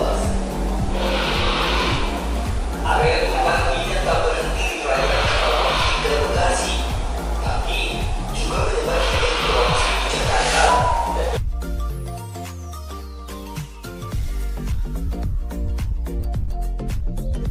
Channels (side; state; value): both; identical; correlation 1.00